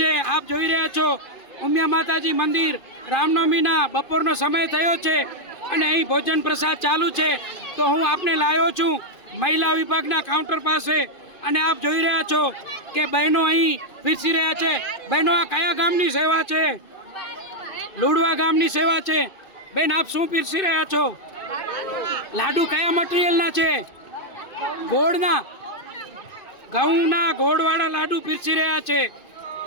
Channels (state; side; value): late; right; 2.5 ms